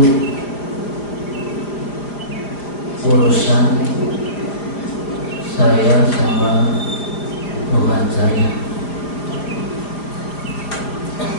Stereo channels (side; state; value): right; late; 5.0 ms